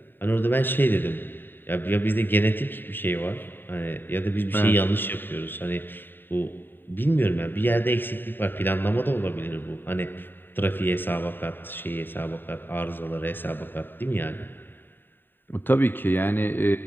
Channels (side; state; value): right; late; 0.095 ms